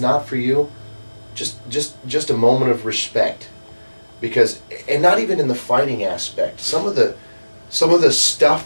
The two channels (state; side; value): inverted; both; correlation -1.00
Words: for you, just a moment of respect, because, and not even in the fighting aspect. Some of the